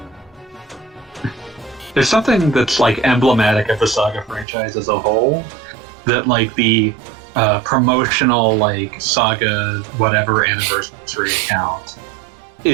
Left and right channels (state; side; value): drops out; left; at 4.5 s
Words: here? There's something that's, like, emblematic of the Saga franchise as a whole, that, like, the promotional, like, Saga whatever anniversary account